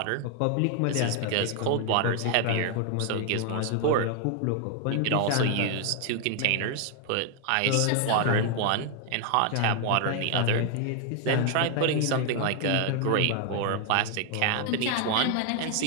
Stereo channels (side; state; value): both; different; correlation 0.00